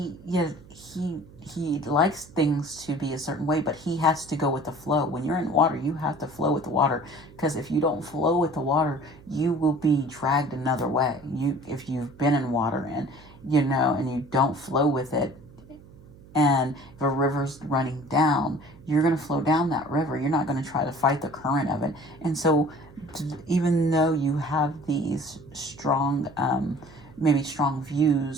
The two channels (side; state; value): right; noise; hum, 22 dB below the sound